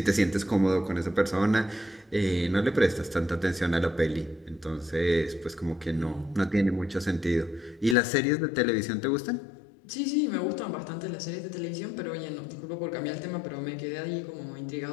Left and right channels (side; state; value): right; drops out; at 8.0 s